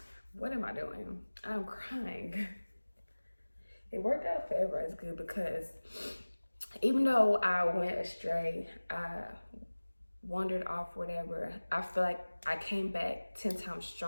What am I doing? I'm crying. It worked out for everybody's good because even though I went astray, I wandered off, whatever, I feel like I came back 10 times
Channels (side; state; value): both; inverted; correlation -1.00